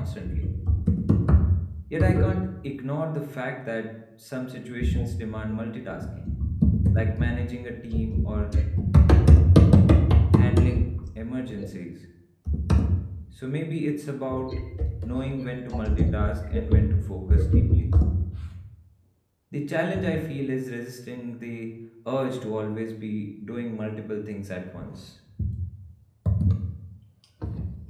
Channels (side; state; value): both; identical; correlation 1.00